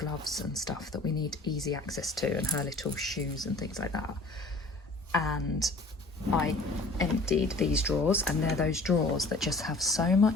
and stuff that we need easy access to, and her little shoes and things like that. And I emptied these drawers, and they're those drawers that just have so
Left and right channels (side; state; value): right; quieter; 3.0 dB